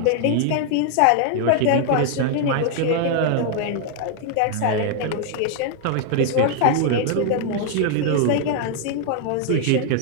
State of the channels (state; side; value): different; both; correlation 0.00